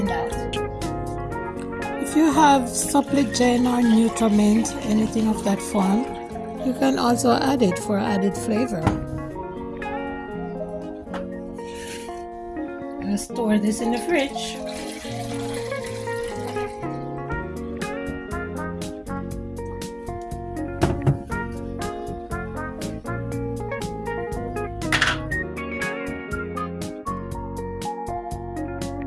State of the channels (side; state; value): both; identical; correlation 1.00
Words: that. If you have Suppligen or Nutrament, anything of that form, you can also add it for added flavor. I'm going to store this in the fridge.